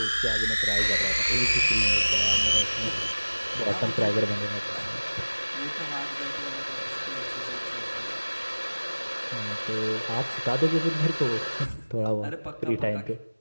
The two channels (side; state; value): both; inverted; correlation -1.00